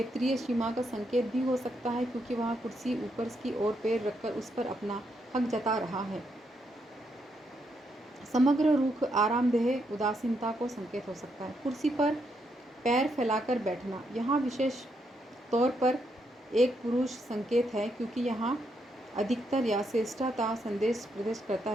सीमा का संकेत भी हो सकता है क्योंकि वहाँ कुर्सी ऊपर की ओर पैर रखकर उस पर अपना हक जता रहा है। समग्र रुख आरामदेह उदासीनता को संकेत हो सकता है। कुर्सी पर पैर फैलाकर बैठना, यहाँ विशेष तौर पर एक पुरुष संकेत है क्योंकि यहाँ अधिकतर या श्रेष्ठता संदेश प्रदर्शित करता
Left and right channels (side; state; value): both; normal; correlation 0.78